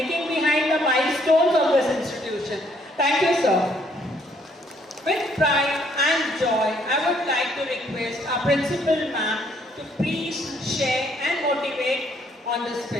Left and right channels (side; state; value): both; normal; correlation 0.67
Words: behind the milestones of this institution. Thank you, sir. With pride and joy, I would like to request our principal ma'am to please share and motivate on this